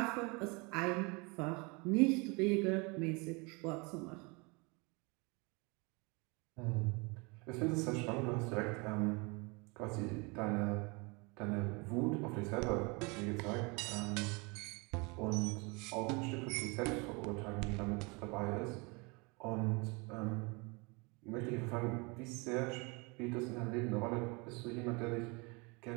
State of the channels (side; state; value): left; quieter; 28.9 dB